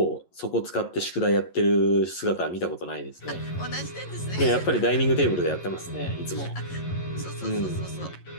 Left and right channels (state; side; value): late; right; 11 ms